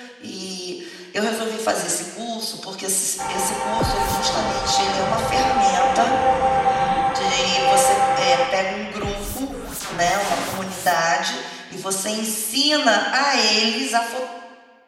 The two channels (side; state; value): both; identical; correlation 1.00